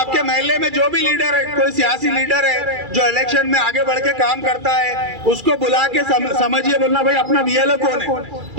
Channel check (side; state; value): left; late; 2.4 ms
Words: महल्ले में जो भी लीडर है, कोई सियासी लीडर है जो इलेक्शन में आगे बढ़ के काम करता है, उसको बुला के समझिए, बोलना भाई अपना BLO कौन है,